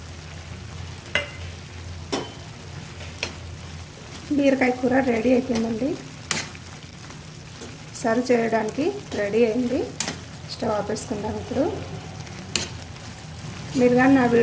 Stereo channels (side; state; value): both; identical; correlation 1.00